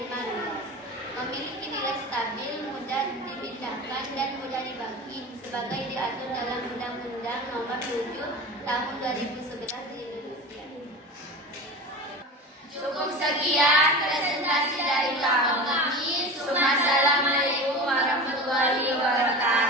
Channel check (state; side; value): normal; both; correlation 0.31